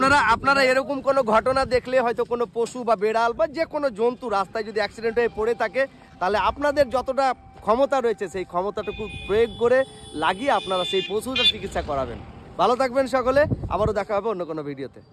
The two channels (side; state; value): both; identical; correlation 1.00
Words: আপনারা এরকম কোনো ঘটনা দেখলে, হয়তো কোনো পশু বা বেড়াল বা যে কোনো জন্তু রাস্তায় যদি অ্যাক্সিডেন্ট হয়ে পড়ে থাকে, তাহলে আপনাদের যতটা ক্ষমতা রয়েছে সেই ক্ষমতাটুকু প্রয়োগ করে লাগিয়ে আপনারা সেই পশুটার চিকিৎসা করাবেন। ভালো থাকবেন সকলে, আবারও দেখা হবে অন্য কোনো ভিডিওতে।